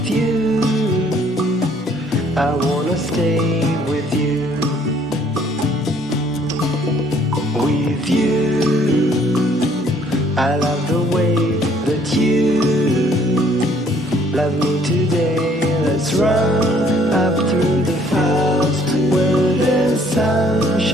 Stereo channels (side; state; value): both; normal; correlation 0.62